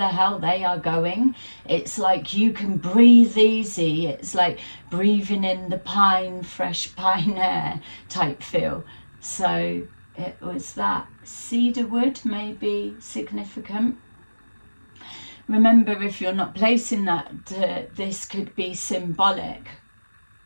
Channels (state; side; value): inverted; both; correlation -1.00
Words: hell they are going, it's like you can breathe easy. It's like breathing in the fresh pine air type feel. So it was that. Cedar wood may be significant. Remember, if you're not placing that, this could be symbolic.